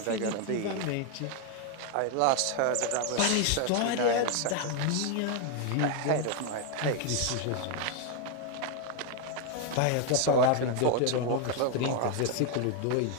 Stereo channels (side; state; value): both; different; correlation 0.00